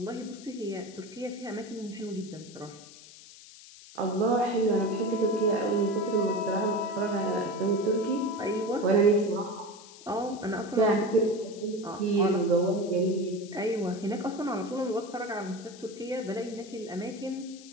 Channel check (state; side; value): noise; left; hiss, 19 dB below the sound